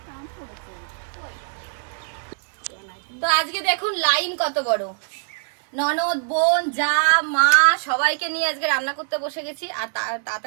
তো আজকে দেখুন লাইন কত বড়, ননদ, বোন, যা, মা সবাইকে নিয়ে আজকে রান্না করতে বসে গেছি। আর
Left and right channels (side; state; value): left; silent; digital silence